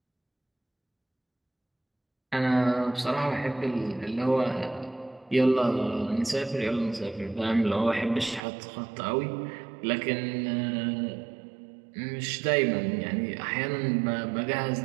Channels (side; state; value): left; drops out; at 8.4 s